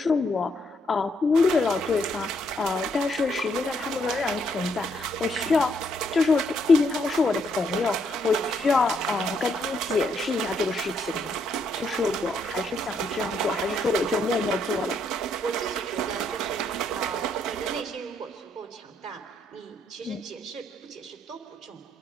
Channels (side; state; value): both; normal; correlation 0.74